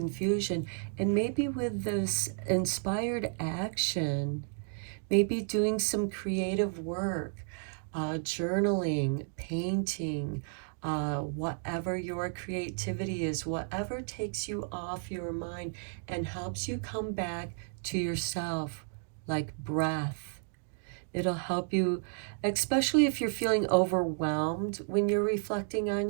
and maybe with this inspired action, maybe doing some creative work, journaling, painting, whatever your creativity is, whatever takes you off your mind and helps you come back to yourself, like breath. It'll help you, especially if you're feeling overwhelmed when you're reflecting on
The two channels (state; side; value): silent; left; 56 dB below the other